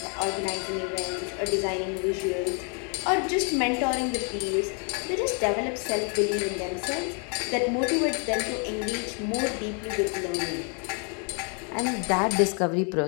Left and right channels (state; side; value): quieter; right; 37.8 dB